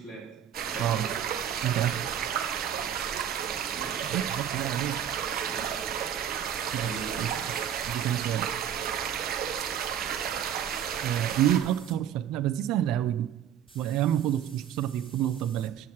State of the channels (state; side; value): quieter; left; 9.7 dB